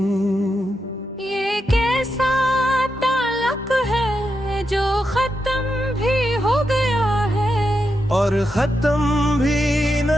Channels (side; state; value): both; normal; correlation 0.86